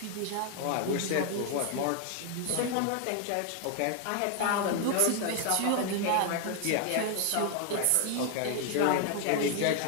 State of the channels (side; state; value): both; different; correlation 0.00